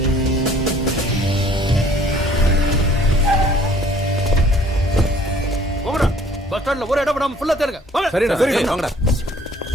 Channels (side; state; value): both; normal; correlation 0.57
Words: பஸ் ஸ்டாண்ட்ல ஒரு இடம் விடாம ஃபுல்லா தேடுங்க. சரிண்ணா, சரி வாங்கடா.